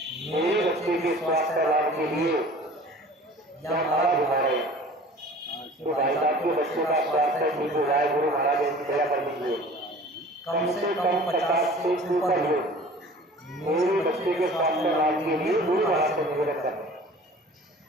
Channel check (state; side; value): normal; both; correlation 0.45